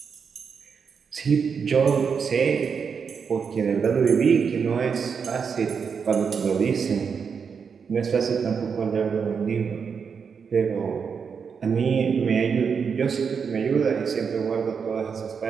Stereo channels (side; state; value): left; quieter; 6.2 dB